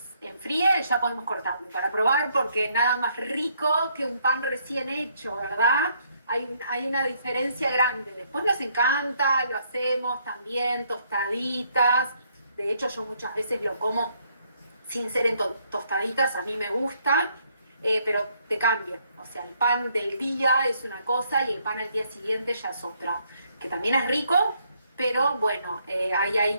enfríe, ya podemos cortarlo para probar, porque nada más rico que un pan recién hecho, ¿verdad? Hay una diferencia grande. Después nos encanta, lo hacemos también, tostaditas. De hecho, yo muchas veces lo como sin ser en tostaditas, a mí me gusta, pero te cambia. O sea, el pan del día es una cosa y el pan al día siguiente ya es otra, que también es rico, pero bueno, hay ahí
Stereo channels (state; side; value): inverted; both; correlation -0.70